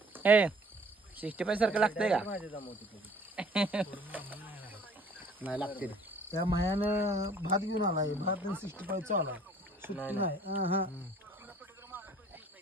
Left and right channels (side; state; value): both; normal; correlation 0.54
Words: ए 65 सारखं लागतंय का नाही लागते त्या मायानं भात घेऊन आलाय भात 65 चा आला सुट्टी नाही हा